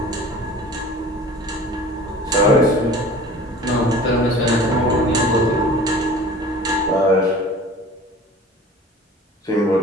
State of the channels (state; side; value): normal; both; correlation 0.43